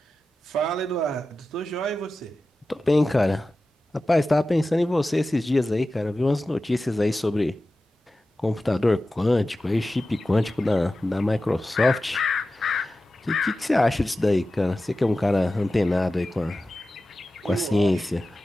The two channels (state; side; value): normal; both; correlation 0.94